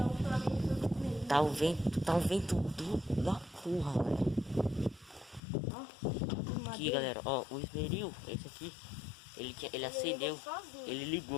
Tá um vento da porra, velho. Aqui, galera, ó, o esmeril, esse aqui, ele acendeu, ele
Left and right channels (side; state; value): right; drops out; at 5.4 s